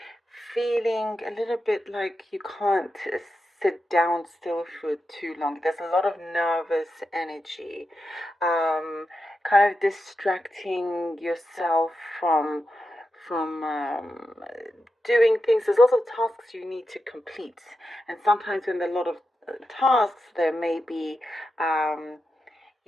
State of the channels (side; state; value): both; normal; correlation 0.88